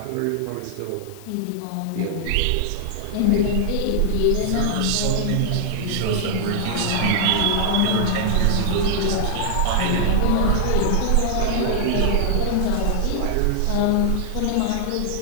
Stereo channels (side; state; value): both; different; correlation -0.01